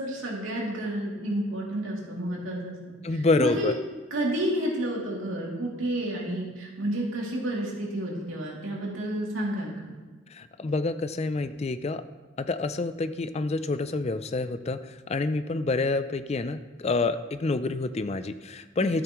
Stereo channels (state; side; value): normal; both; correlation 0.53